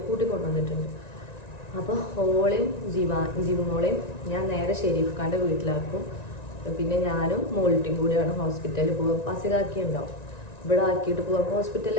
കൂട്ടിക്കൊണ്ടുവന്നിട്ടുണ്ട്. അപ്പോൾ ഓളെയും ജീവമോളെയും ഞാൻ നേരെ ഷെരീഫ് ഖാൻ്റെ വീട്ടിലാക്കും. പിന്നെ ഞാനും മോൾട്ടിയും കൂടിയാണ് ഹോസ്പിറ്റലിൽ പോകാൻ. ബസ്സിലാക്കി ഉണ്ടാവും, ഇവിടെ ആക്കിയിട്ട് പോകാം.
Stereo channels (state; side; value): late; right; 1.9 ms